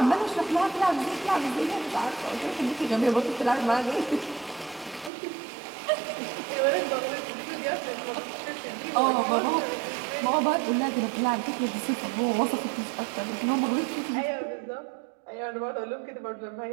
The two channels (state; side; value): drops out; left; at 5.1 s